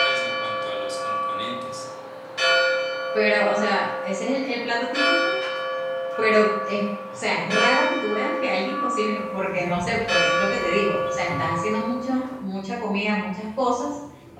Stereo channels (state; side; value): identical; both; correlation 1.00